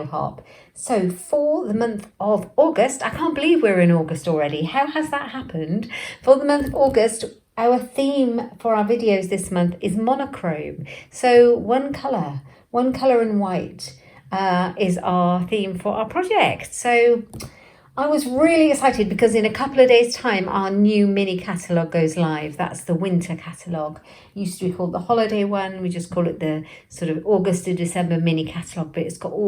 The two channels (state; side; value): identical; both; correlation 1.00